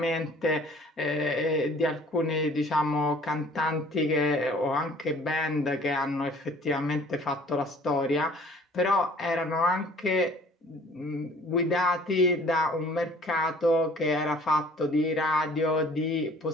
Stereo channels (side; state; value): both; normal; correlation 0.53